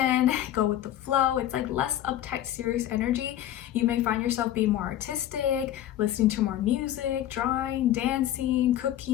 go with the flow. It's like less uptight, serious energy. You may find yourself being more artistic, listening to more music, drawing, dancing,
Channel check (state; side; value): quieter; right; 12.3 dB